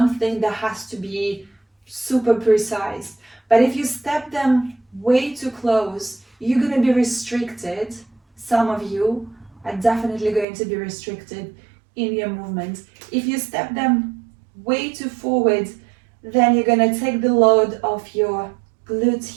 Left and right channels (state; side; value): drops out; left; at 10.5 s